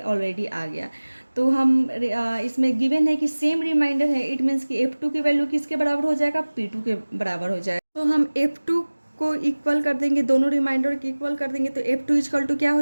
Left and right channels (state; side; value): inverted; both; correlation -1.00